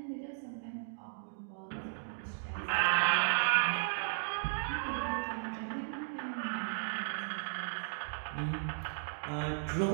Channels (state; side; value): silent; left; digital silence